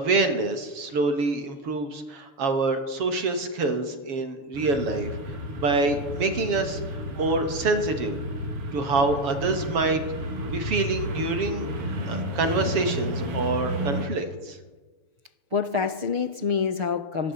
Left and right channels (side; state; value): left; late; 6.6 ms